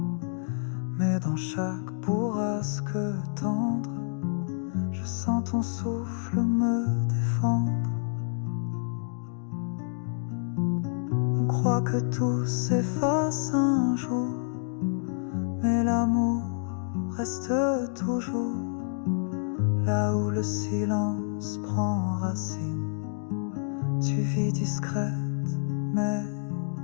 Mais dans chaque bourrasque tendre, je sens ton souffle me défendre. On croit que tout s'efface un jour, mais l'amour reste toujours là où le silence prend racine. Tu vis discrète mais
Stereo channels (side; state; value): right; silent; digital silence